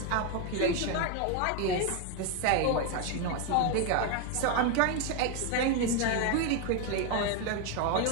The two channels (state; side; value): different; both; correlation 0.01